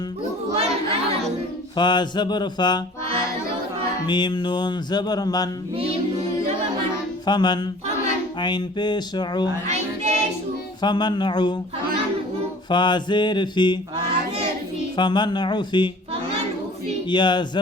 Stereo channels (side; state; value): both; normal; correlation 0.47